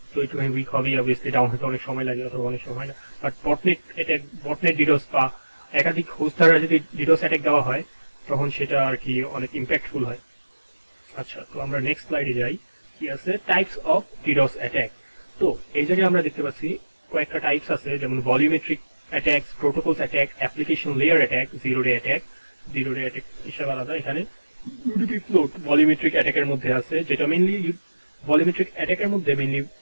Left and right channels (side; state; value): both; inverted; correlation -1.00